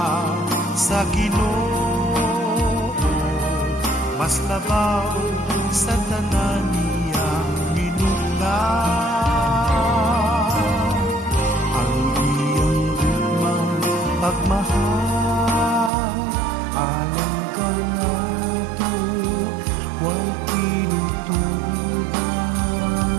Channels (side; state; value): left; drops out; at 15.9 s